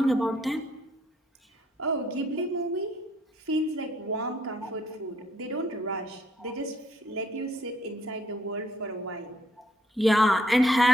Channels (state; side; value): normal; both; correlation 0.67